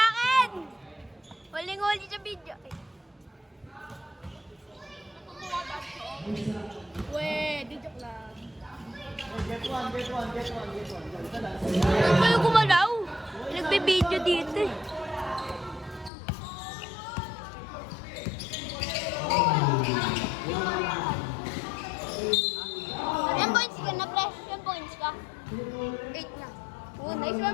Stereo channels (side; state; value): right; drops out; at 16.1 s